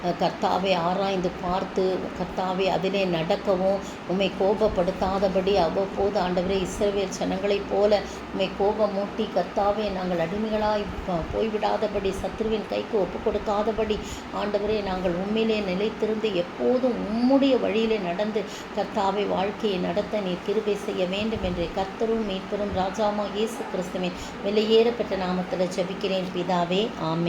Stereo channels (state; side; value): identical; both; correlation 1.00